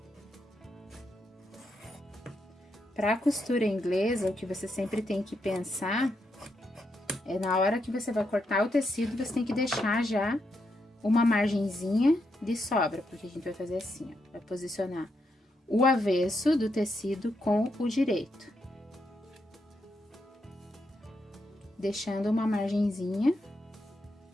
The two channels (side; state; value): both; normal; correlation 0.81